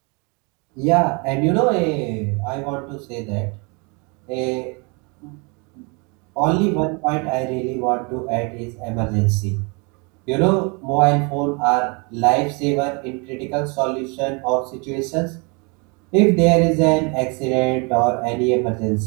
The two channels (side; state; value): left; quieter; 31.6 dB